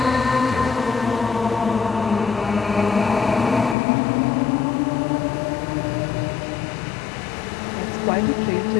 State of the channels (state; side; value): drops out; right; at 3.8 s